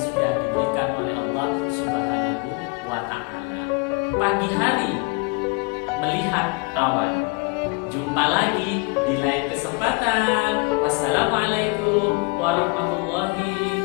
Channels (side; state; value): right; quieter; 28.7 dB